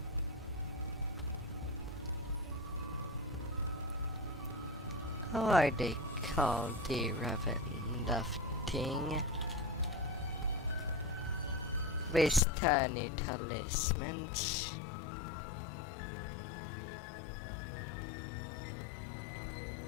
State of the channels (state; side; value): drops out; right; at 12.4 s